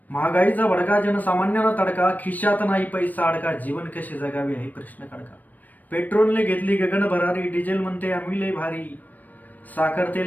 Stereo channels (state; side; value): late; right; 0.083 ms